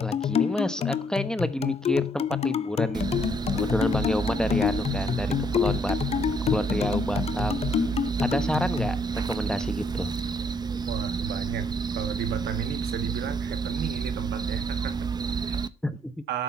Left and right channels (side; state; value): both; normal; correlation 0.68